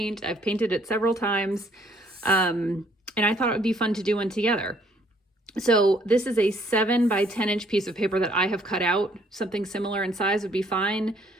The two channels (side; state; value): both; normal; correlation 0.64